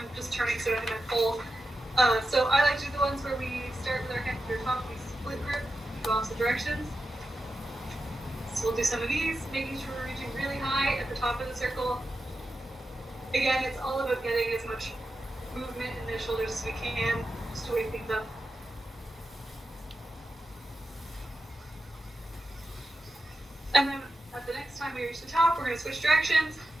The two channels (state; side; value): normal; both; correlation 0.90